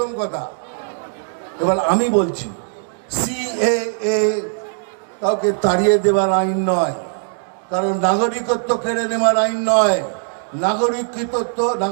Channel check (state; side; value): silent; left; digital silence